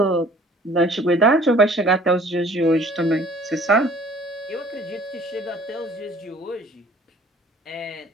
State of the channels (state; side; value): normal; both; correlation 0.53